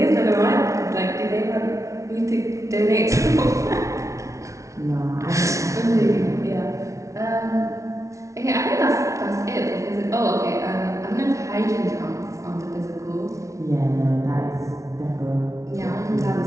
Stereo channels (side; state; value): left; late; 0.15 ms